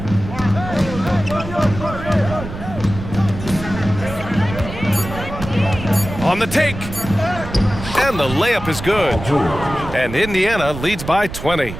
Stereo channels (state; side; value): noise; right; rumble, 10 dB below the sound